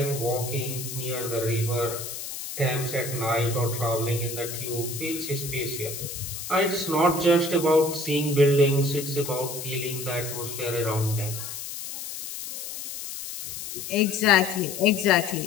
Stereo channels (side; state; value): left; noise; hiss, 8 dB below the sound